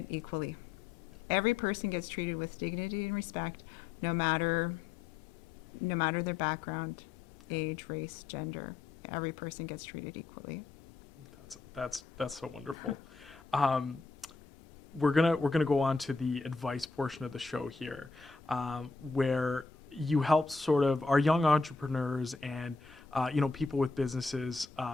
equally. Every person gets treated with dignity and respect, no matter their background, age, race, gender. Every person gets treated equally. That's so wonderful. We're gonna go on to the advice portion of the show here, where you help sort of our young entrepreneurs and you know, people with businesses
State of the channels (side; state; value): right; quieter; 4.2 dB